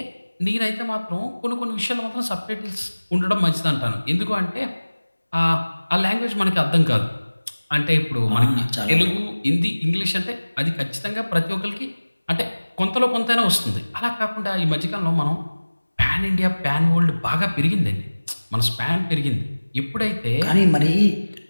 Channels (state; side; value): inverted; both; correlation -1.00